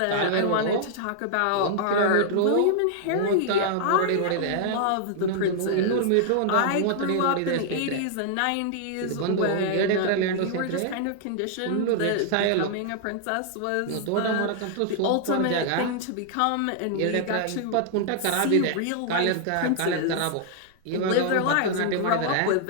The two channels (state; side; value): different; both; correlation -0.01